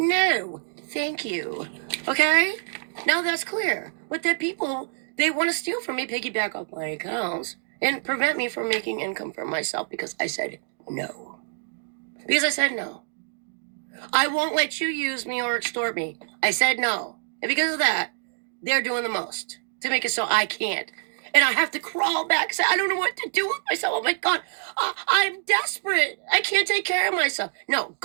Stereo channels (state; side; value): silent; left; digital silence